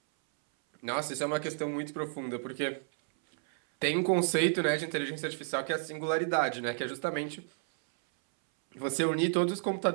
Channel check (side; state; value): left; silent; 57 dB below the other